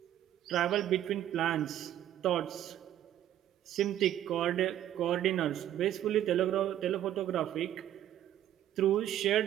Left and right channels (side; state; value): left; quieter; 11.8 dB